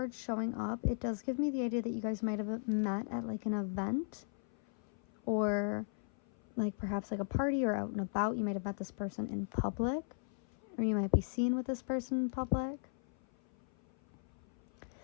showing up, it does give me the idea that you guys might have met at like an event, or like perhaps like a party or out and about. You might have met this person in public, or you might be seen with this person in public.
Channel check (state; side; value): silent; right; 53 dB below the other